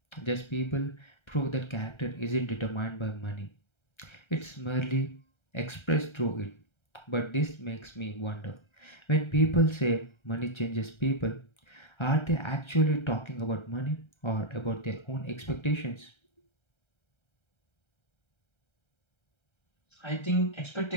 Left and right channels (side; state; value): right; late; 1.3 ms